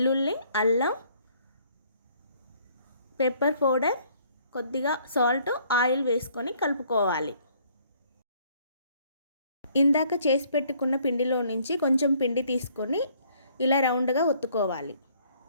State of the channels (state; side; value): inverted; both; correlation -0.62